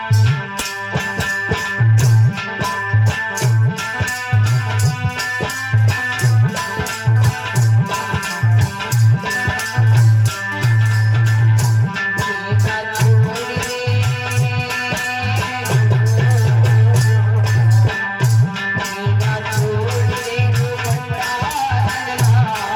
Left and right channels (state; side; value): identical; both; correlation 1.00